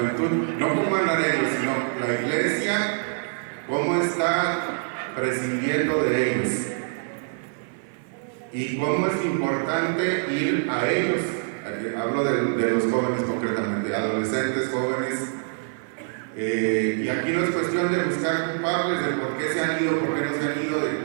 no cómo andan ellos, sino la iglesia, cómo está prescindiendo de ellos y cómo es importante ir a ellos. Hablo de los jóvenes concretamente, adolescentes, jóvenes. Y aquí no es cuestión de buscar culpables de por qué se han ido, por qué no se han ido,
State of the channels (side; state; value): left; silent; 62 dB below the other